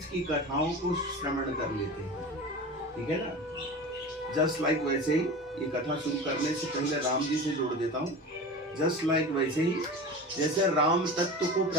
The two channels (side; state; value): both; normal; correlation 0.31